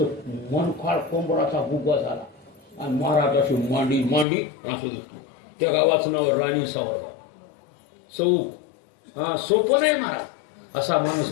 मनखाळ कोंबडाचा बुगा झाला आणि महाराजाची मांडी मांडी असं दिसतो. त्या गावाचं नाव राणी सावरगाव चौक. हा सोपं नाही महाराज. असा माणूस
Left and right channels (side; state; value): right; drops out; at 4.2 s